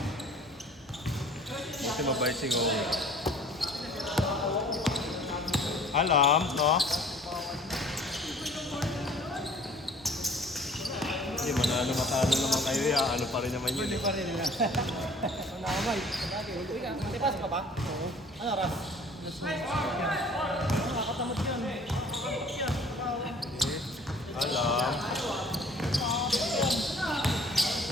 Kasi mabait si Ngong. Alam, no? Hindi, manalo matalo naman kayo ya. Ano pa rin naman yun eh. Hindi pa rin nila. Ang nakamay. Tipas ka ba? Oo. Ano ras? Nakakatamot yun. Alam.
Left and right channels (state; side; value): normal; both; correlation 0.51